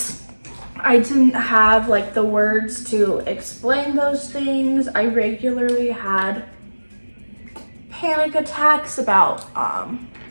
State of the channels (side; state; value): both; inverted; correlation -1.00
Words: I didn't have like the words to explain those things. I regularly had panic attacks about